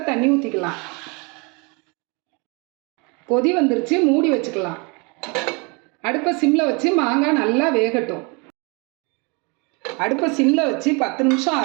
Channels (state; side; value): quieter; left; 30.7 dB